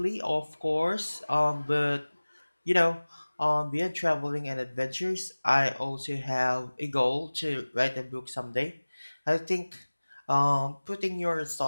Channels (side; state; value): both; inverted; correlation -1.00